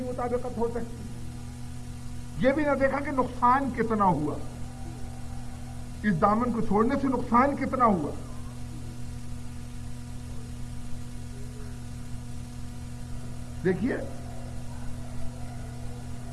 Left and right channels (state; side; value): identical; both; correlation 1.00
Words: مطابقت ہو سکتی؟ یہ بھی نہ دیکھا کہ نقصان کتنا ہوا، اس دامن کو چھوڑنے سے نقصان کتنا ہوا۔ دیکھیے